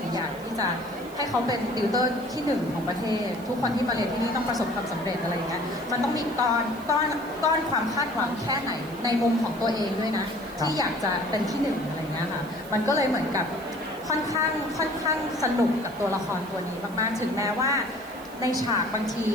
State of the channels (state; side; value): noise; right; hiss, 21 dB below the sound